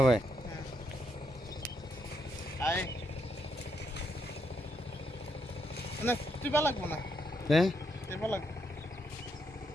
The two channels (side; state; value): both; normal; correlation 0.78